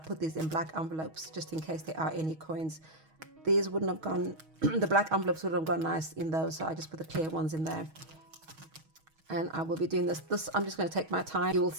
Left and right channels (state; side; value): late; left; 6.3 ms